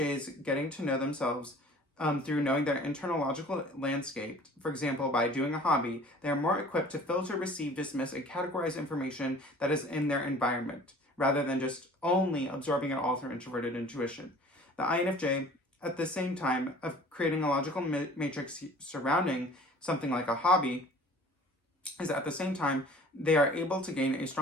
getting to know themselves through knowing their internal logical landscape, for example, by doing a hobby, they are more equipped to filter, receive, dismiss, and categorize information that is in their environment, rather than just only absorbing it all through introverted intuition. The INFJ, at the same time of creating a logical matrix surrounding something like a hobby, is at the same time they are able to gain a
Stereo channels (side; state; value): both; normal; correlation 0.48